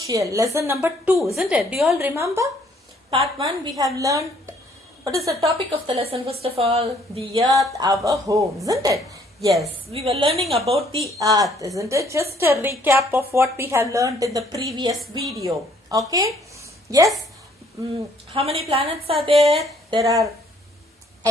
lesson number 2, isn't it? Do you all remember? Part 1, we have learned, what is the topic of the lesson first of all? The earth, our home, isn't it? Yes, we were learning about the earth, isn't it? Just a recap of what we have learned in the previous video. Okay? Yes? How many planets are there? There are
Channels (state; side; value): normal; both; correlation 0.63